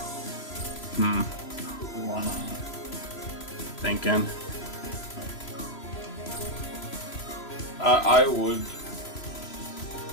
Thinking. I would.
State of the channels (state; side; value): late; right; 3.0 ms